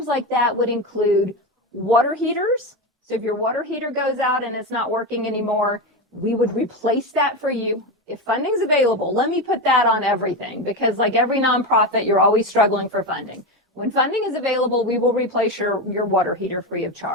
like that would include water heaters. So if your water heater goes out and it's not working anymore, we would replace that for you. If funding's available, let me put that on everything, because like every nonprofit, you're always struggling for funding. When funding is available, we will replace your water heater free of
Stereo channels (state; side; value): normal; both; correlation 0.17